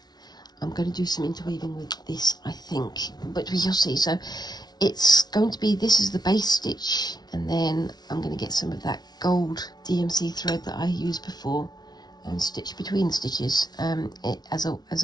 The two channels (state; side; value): late; right; 0.19 ms